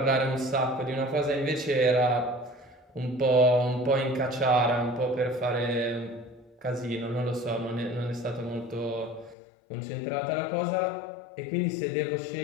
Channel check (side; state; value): right; drops out; at 9.3 s